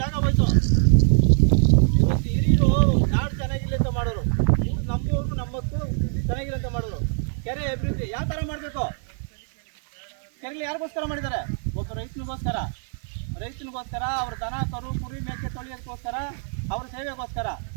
ಜಾಗ ಹೋಯ್ತು. ಇವತ್ತು ಹಿರಿಯರು ನಾಡು ಚೆನ್ನಾಗಿಲ್ಲ ಅಂತ ಮಾಡೋರು, ನಮ್ಮೂರು ನಮ್ಮಕ್ಕೂ ಚೆನ್ನಾಗಿಲ್ಲ ಅಂತ ಮಾಡೋರು. ಕೆರೆ ಅಭಿವೃದ್ಧಿ ಯಾವ ಥರ ಮಾಡಬೇಕು? ಕೆರೆಗಳು ಯಾರಿಗೋಸ್ಕರ ಮಾಡಿದ್ದಾರೆ? ಒಬ್ಬ ರೈತನಿಗೋಸ್ಕರ, ಅವ್ರ ದನ ಕರು ಕುರಿ ಮೇಕೆ ತೊಳೆಯೋದಕ್ಕೋಸ್ಕರ, ಅವ್ರ ಸೇವೆಗೋಸ್ಕರ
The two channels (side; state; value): left; silent; 56 dB below the other